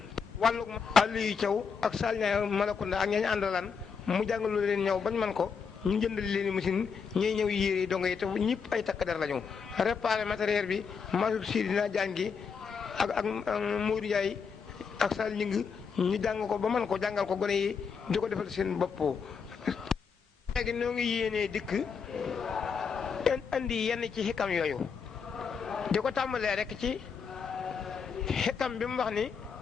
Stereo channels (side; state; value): right; quieter; 6.0 dB